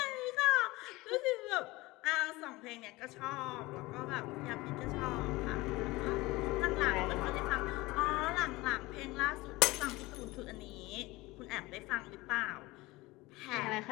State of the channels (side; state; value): right; quieter; 21.0 dB